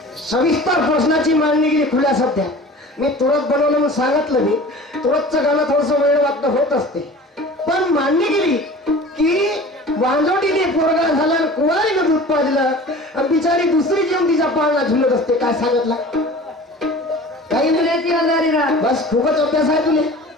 सविस्तर प्रश्नाची मांडणी केली खुल्या सध्या. मी तुरंत बनवलं म्हणून सांगितलं. मी तुरंतचं गाणं थोडस वेळ वाटणं होत असते, पण मांडणी केली की वांजोटीने पोरगा झाला, कुवारीनं दूध पाजलं, आणि बिचारी दुसरी जेवण तिच्या पाळणा झुलत असते. काय सांगितलं काही नाही. बस खूपच अभ्यास आहे तुले.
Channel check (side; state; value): both; normal; correlation 0.41